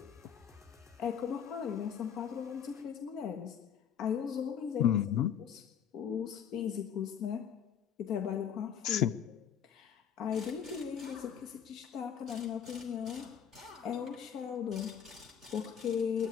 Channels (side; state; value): right; quieter; 8.3 dB